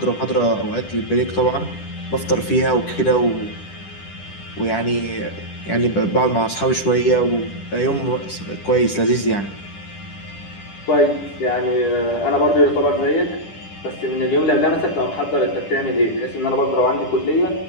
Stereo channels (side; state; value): right; late; 10 ms